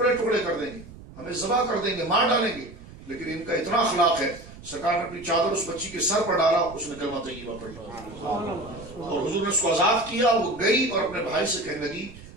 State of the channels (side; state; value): right; noise; rumble, 17 dB below the sound